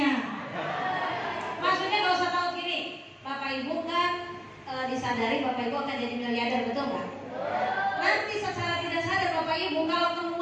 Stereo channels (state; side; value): identical; both; correlation 1.00